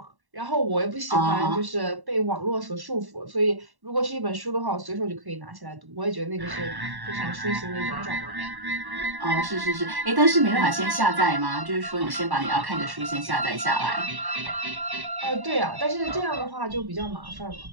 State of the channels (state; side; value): late; left; 1.1 ms